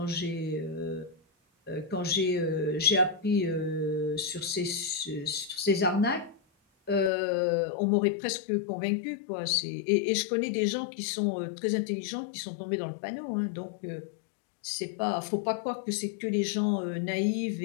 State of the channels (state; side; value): drops out; right; at 7.1 s